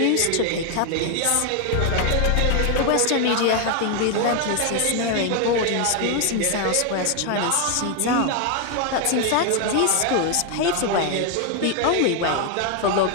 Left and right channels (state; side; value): different; both; correlation 0.01